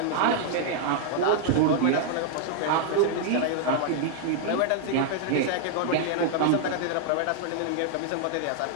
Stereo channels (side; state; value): both; different; correlation -0.01